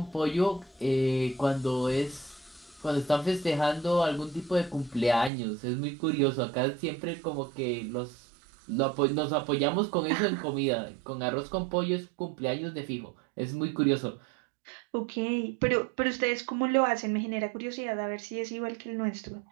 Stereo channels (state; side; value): drops out; left; at 5.3 s